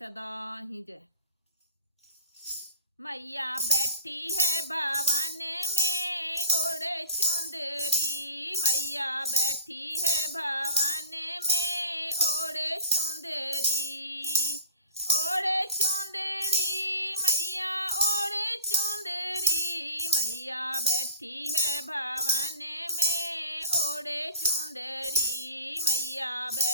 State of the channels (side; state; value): both; inverted; correlation -0.43